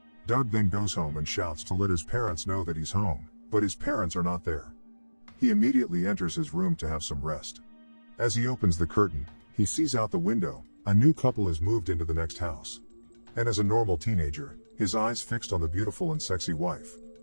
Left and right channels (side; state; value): both; inverted; correlation -1.00